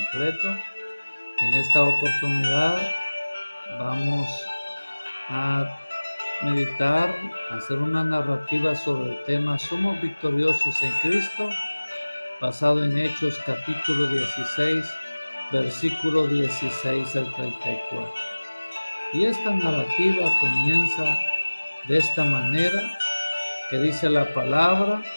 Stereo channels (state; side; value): inverted; both; correlation -1.00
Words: En esta oportunidad vamos a meditar, hacer una narrativa sobre el tema Somos victoriosos en Cristo, basado en Hechos capítulo 16, versículo 16 al 34. Y esta narrativa comienza de esta manera, que dice la palabra